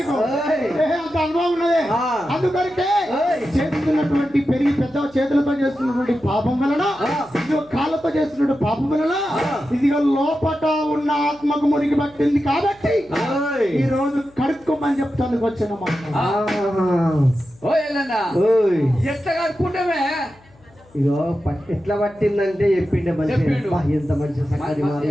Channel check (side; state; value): left; noise; hum, 28 dB below the sound